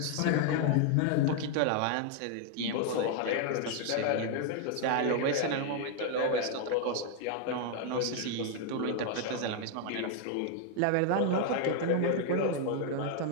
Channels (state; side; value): different; both; correlation 0.00